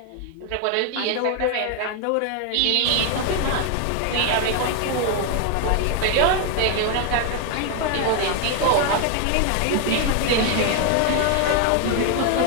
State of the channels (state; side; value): different; both; correlation 0.00